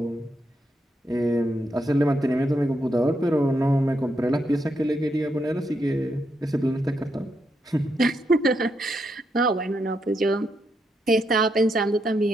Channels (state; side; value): normal; both; correlation 0.81